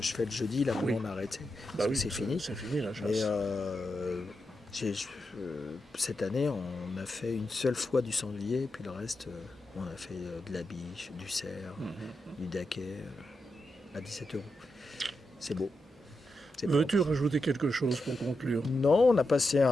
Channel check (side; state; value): both; normal; correlation 0.87